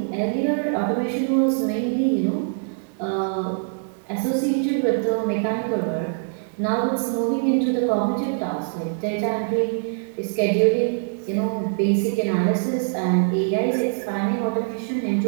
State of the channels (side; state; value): left; silent; 62 dB below the other